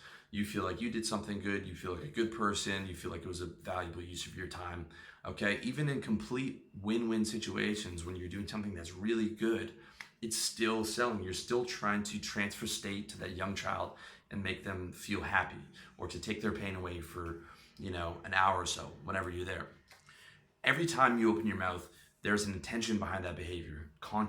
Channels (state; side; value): identical; both; correlation 1.00